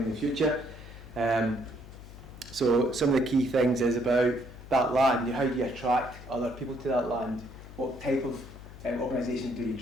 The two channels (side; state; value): left; noise; hum, 15 dB below the sound